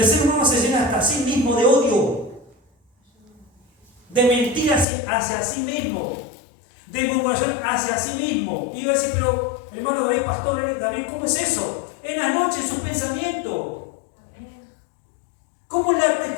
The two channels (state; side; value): drops out; right; at 4.9 s